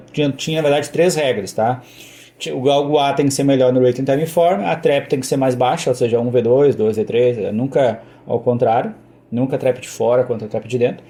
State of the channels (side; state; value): both; identical; correlation 1.00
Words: tinha na verdade 3 regras, tá? O galgo A tem que ser melhor no Rating Time Form, a trap tem que ser mais baixa, ou seja, 1v2, 2v3, nunca ao contrário. Nunca trap de fora contra trap de dentro.